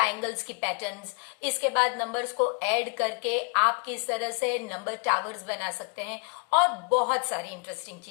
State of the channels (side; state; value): right; quieter; 38.6 dB